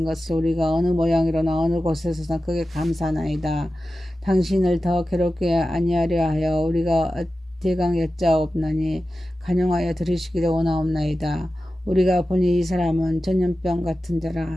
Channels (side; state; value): both; normal; correlation 0.94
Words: 것을 우리가 어느 모양이로나 어느 곳에서나 크게 감사하나이다. 당신을 더 괴롭게 아니하려 하여 우리가 대강 여짜옵나니 간용하여 들으시기를 원하옵나이다. 우리가 보니 이 사람은 전염병 같은